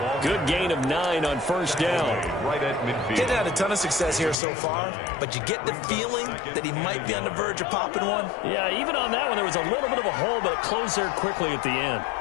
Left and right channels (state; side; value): drops out; right; at 4.4 s